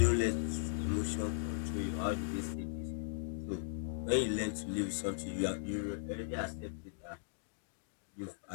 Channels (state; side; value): silent; right; digital silence